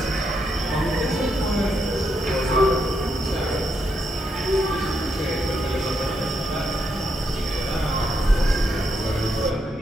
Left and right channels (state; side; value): normal; both; correlation 0.80